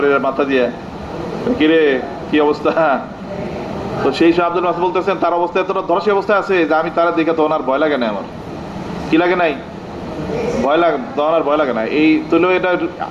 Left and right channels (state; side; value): identical; both; correlation 1.00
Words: মাথা দিয়ে, কিরে কি অবস্থা? তো সেই সব আব্দুল মাসউদ বলতেছেন তার অবস্থা এতটা ধরাশায়ী অবস্থায় আছে যে আমি তারা দেখে তখন আর ভয় লাগে না, আমার কি লাগে নাই? ভয় লাগে, তখন আর ভয় লাগে না। এই তুলেও এটা